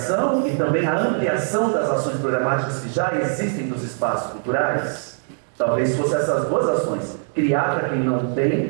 e também a ampliação das ações programáticas que já existem dos espaços culturais. Talvez fosse essas duas ações. Criar para quem não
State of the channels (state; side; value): silent; left; 64 dB below the other